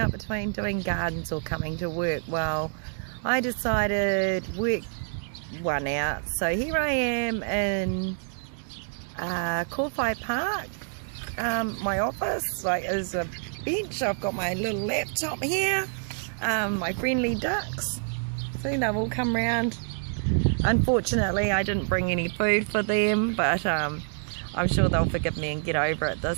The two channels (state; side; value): silent; left; 60 dB below the other